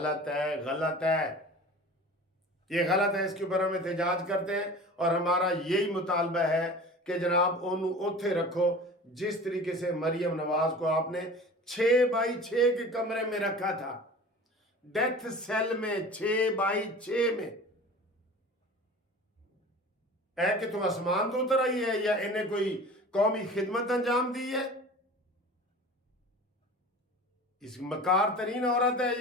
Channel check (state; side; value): normal; both; correlation 0.39